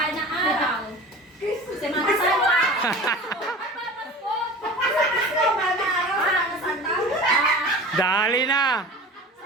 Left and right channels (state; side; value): normal; both; correlation 0.37